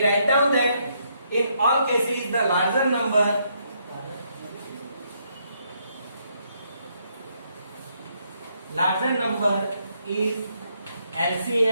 write down that in all cases the larger number is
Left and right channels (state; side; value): inverted; both; correlation -0.74